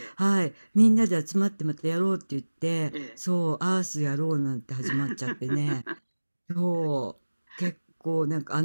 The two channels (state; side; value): inverted; both; correlation -1.00